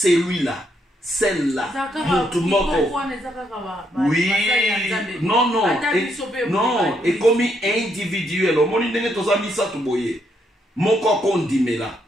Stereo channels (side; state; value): both; normal; correlation 0.76